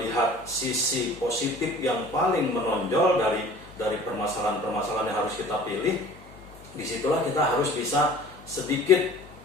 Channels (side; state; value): left; noise; hum, 22 dB below the sound